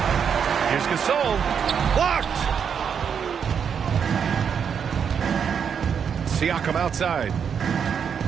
Here's Gasol. Blocked. Siakam outside.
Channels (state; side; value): quieter; left; 7.3 dB